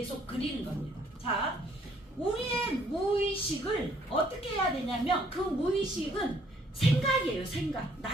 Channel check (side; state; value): both; normal; correlation 0.64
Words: 그리는 겁니다. 자, 우리의 무의식을 어떻게 해야 되냐면 그 무의식은 생각이에요. 생각.